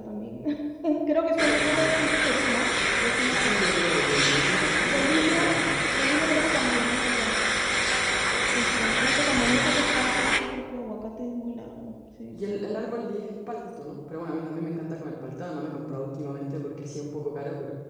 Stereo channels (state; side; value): identical; both; correlation 1.00